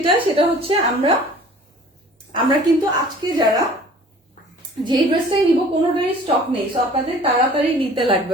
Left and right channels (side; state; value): both; normal; correlation 0.49